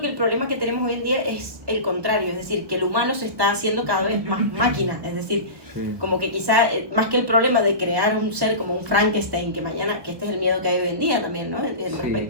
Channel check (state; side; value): late; left; 1.1 ms